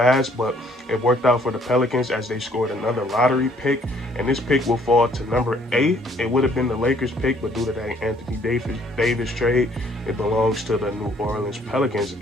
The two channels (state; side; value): normal; both; correlation 0.62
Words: but it worked out for the Pelicans as they scored another lottery pick, and this pick will fall to number 8. It would have been the Lakers pick, but due to that Anthony Davis trade, it belongs to the New Orleans Pelicans.